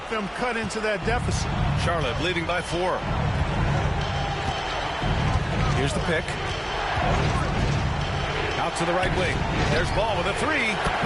them cut into that deficit. Charlotte leading by 4. Here's the pick. Out to the right wing. There's Ball with a 3.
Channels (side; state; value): both; identical; correlation 1.00